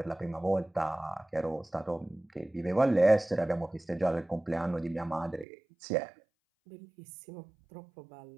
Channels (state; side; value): drops out; left; at 5.5 s